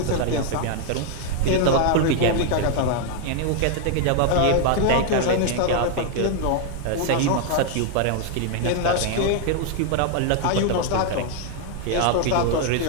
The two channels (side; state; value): both; different; correlation 0.00